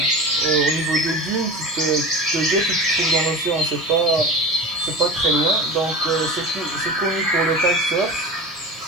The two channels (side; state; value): left; noise; hiss, 27 dB below the sound